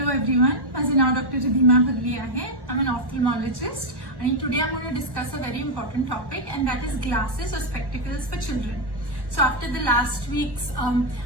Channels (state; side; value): late; left; 1.1 ms